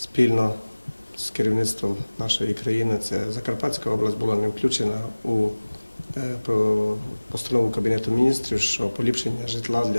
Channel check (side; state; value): both; inverted; correlation -1.00